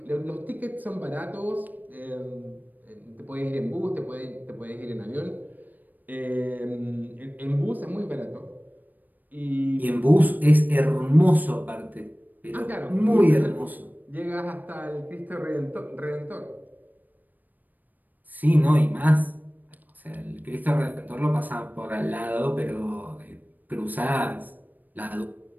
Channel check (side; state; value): left; late; 0.086 ms